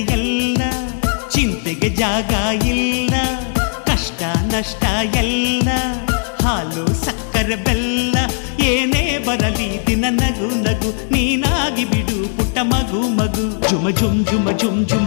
ಎಲ್ಲ ಚಿಂತೆಗೆ ಜಾಗ ಇಲ್ಲ, ಕಷ್ಟ ನಷ್ಟ ಎಲ್ಲ ಹಾಲು ಸಕ್ಕರೆ ಬೆಲ್ಲ, ಏನೇ ಬರಲಿ ದಿನ ನಗು ನಗು ನೀನಾಗಿ ಬಿಡು ಪುಟ್ಟ ಮಗು ಮಗು. ಜುಮ ಜುಮ್ ಜುಮ ಜುಮ್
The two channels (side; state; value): right; silent; 60 dB below the other